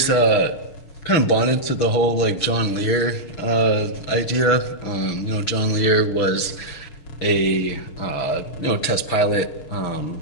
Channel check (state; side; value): late; right; 6.6 ms